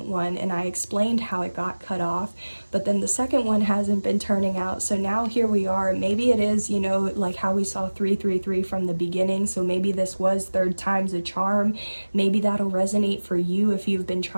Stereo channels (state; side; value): inverted; both; correlation -1.00